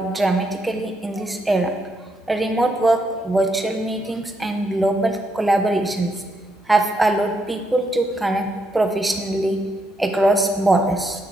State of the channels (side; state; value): both; normal; correlation 0.78